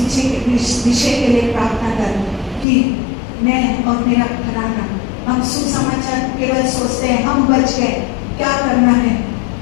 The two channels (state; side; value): drops out; right; at 2.7 s